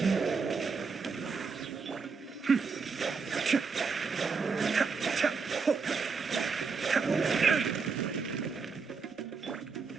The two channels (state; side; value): quieter; left; 5.0 dB